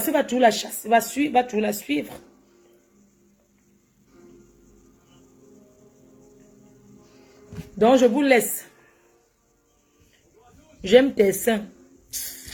va toujours la chasser, va toujours la suivre. Donc, je vous laisse. J'aime tes seins.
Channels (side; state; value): both; identical; correlation 1.00